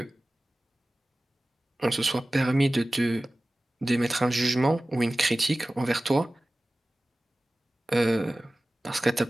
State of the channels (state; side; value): normal; both; correlation 0.97